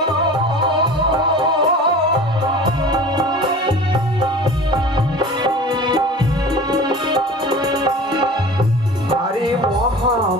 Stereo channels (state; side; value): normal; both; correlation 0.39